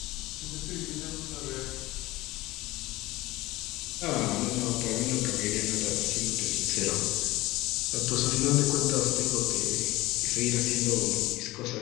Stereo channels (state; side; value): quieter; right; 19.0 dB